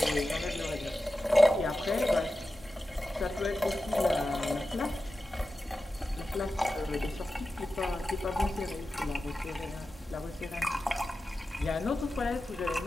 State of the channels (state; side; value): normal; both; correlation 0.93